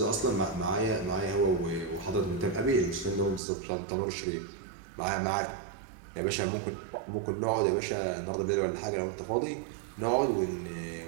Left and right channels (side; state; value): left; drops out; at 3.4 s